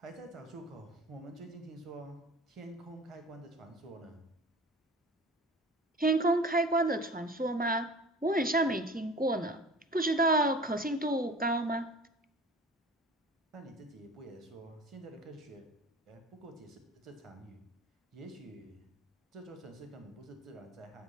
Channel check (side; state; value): both; normal; correlation 0.41